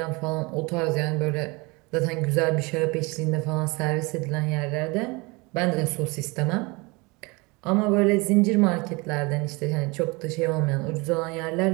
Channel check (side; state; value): left; quieter; 26.3 dB